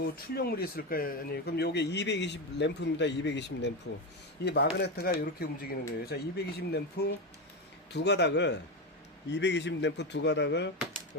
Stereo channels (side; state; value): both; normal; correlation 0.14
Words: 출력물이 있을까요? 아니, 그럼 요게 220 램프입니다. 220 램프. 이 마그네트가 이렇게 움직이는 거예요. 자, 220 램프 두 가닥을, 220 램프 두 가닥을